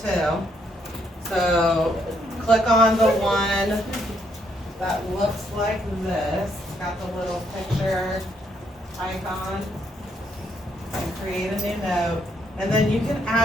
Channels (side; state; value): both; normal; correlation 0.73